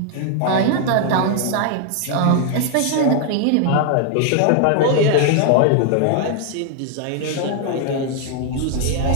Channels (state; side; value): different; both; correlation 0.00